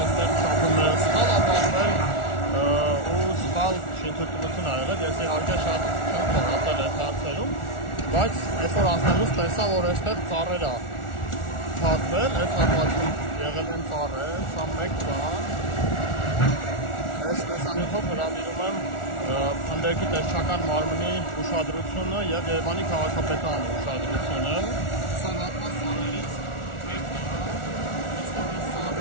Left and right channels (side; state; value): right; late; 1.4 ms